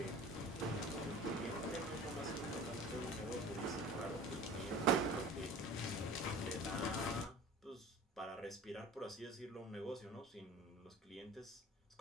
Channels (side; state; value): both; normal; correlation 0.41